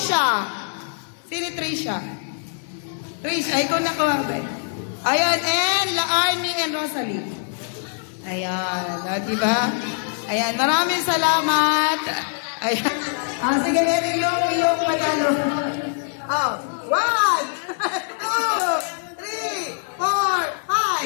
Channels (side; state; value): right; silent; digital silence